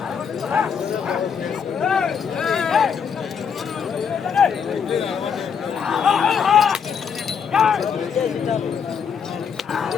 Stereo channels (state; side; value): quieter; right; 6.9 dB